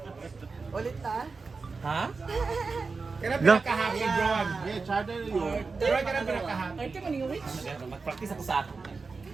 Ulit ta? Ha? Kaya pinakahappy, John. Yeah, charter yun. Pero kaya pinakahappy. Ay, kaya maning rich. Mag-practice ako sa akin.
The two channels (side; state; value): left; quieter; 4.4 dB